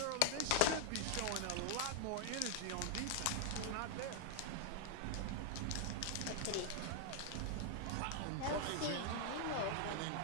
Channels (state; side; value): different; both; correlation -0.01